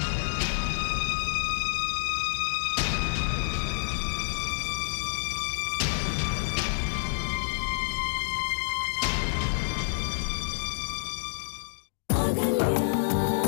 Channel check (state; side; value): silent; right; digital silence